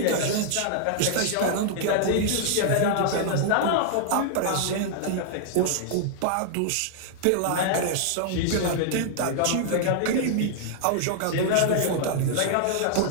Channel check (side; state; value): both; different; correlation -0.01